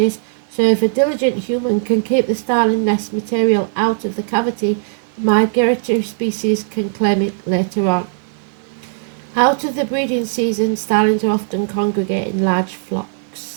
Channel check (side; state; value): left; silent; digital silence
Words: so if a diligent human can keep the starling nest material out of the cavity, the migratory species can claim it later on. Out of the breeding season, starlings are often congregate in large